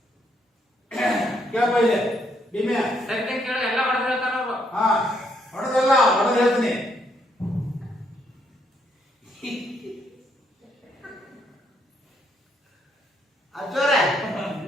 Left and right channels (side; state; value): both; normal; correlation 0.73